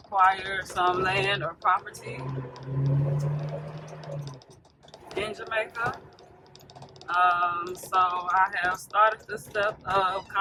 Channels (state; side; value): identical; both; correlation 1.00